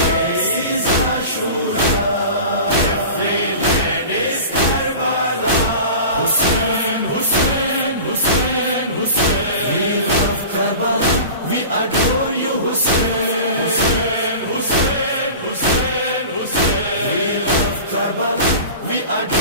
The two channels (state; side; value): inverted; both; correlation -0.36